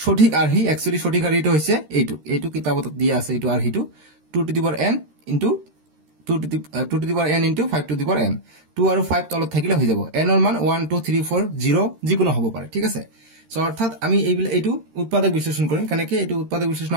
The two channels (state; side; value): late; left; 13 ms